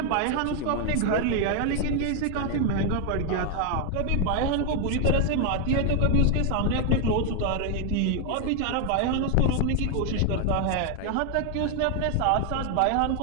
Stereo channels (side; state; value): both; different; correlation 0.00